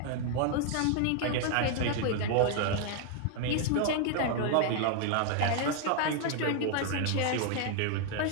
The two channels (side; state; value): both; different; correlation 0.00